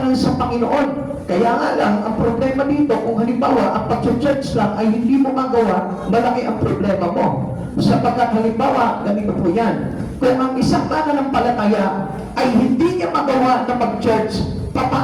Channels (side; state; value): both; identical; correlation 1.00